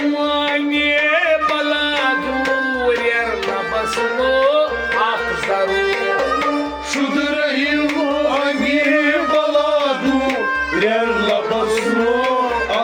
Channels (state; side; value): identical; both; correlation 1.00